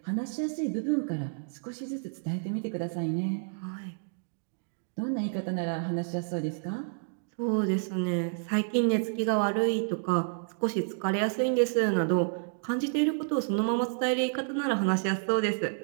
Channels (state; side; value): silent; left; digital silence